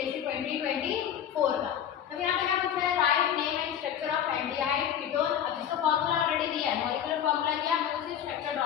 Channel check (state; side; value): quieter; right; 9.5 dB